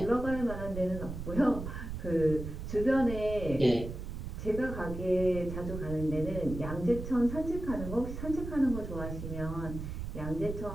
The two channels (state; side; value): noise; right; rumble, 7 dB below the sound